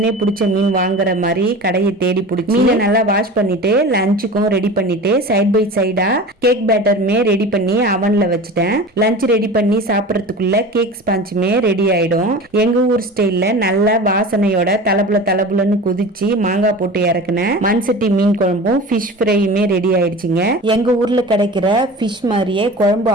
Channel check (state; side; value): normal; both; correlation 0.34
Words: பிடிச்ச மீன் வாங்குற மாதிரி கடையை தேடி பிடிச்சி மீனை நல்லா வாஷ் பண்ணிட்டு லஞ்சுக்கும் ரெடி பண்ணிட்டு சைட் பை சைடா கேக் பேட்டருமே ரெடி பண்ணி அவன்ல வச்சுட்டேன். லஞ்ச் ரெடி பண்ணி சாப்பிடறதுக்குள்ள கேக் ஸ்பாஞ்சுமே ரெடி ஆயிடும். எங்க ஊர் ஸ்டைல்ல நல்ல வாசனையோட தலபுலன்னு குதிச்சு மாங்காய் போட்டு இறக்குன மண்சட்டி மீன் குழம்பும் ஃபிஷ் ஃப்ரையுமே ரெடி ஆயிடுச்சுங்க. எங்க ஊர்ல கிடைக்கிற ஃபிஷ் மாதிரியே குழம்பு